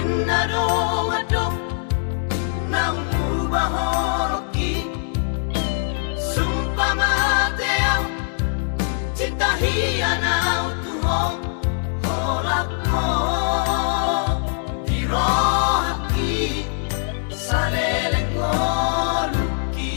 do mado na umuba holoki sumpah mate au cinta hiana autu ho holako dirohaki saleleng ngoluki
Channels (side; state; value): right; silent; digital silence